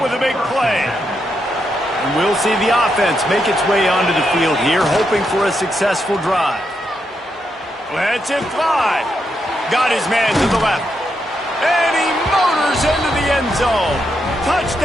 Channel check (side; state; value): both; normal; correlation 0.82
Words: with a big play. And we'll see the offense make its way onto the field here, hoping for a successful drive. Lets it fly. Got his man to the left. And he motors into the end zone.